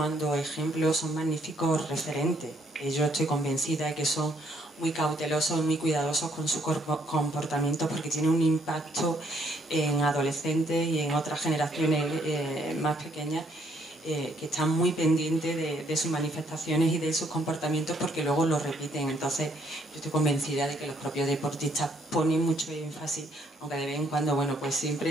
ejemplos, son magníficos referentes. Yo estoy convencida de que son muy cautelosos, muy cuidadosos con su comportamiento, porque tiene un impacto en adolescentes y en otras generaciones más pequeñas, que están muy pendientes de sus manifestaciones y de sus comportamientos, porque luego lo repiten. Entonces yo estoy convencida de que los propios deportistas ponen mucho énfasis, aunque de vez en cuando, bueno, pues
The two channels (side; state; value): both; normal; correlation 0.69